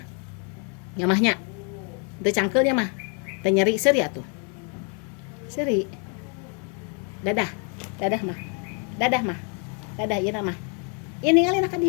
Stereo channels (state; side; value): quieter; right; 39.1 dB